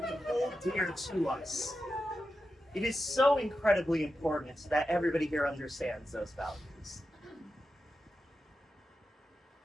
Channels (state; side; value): normal; both; correlation 0.90